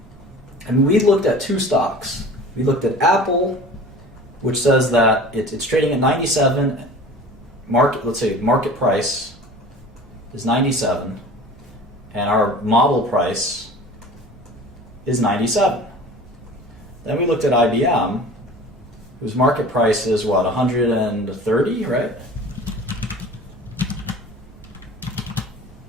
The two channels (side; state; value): both; normal; correlation 0.41